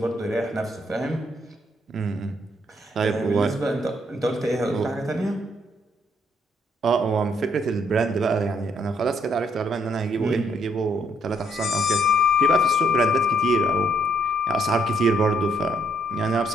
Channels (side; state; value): both; normal; correlation 0.71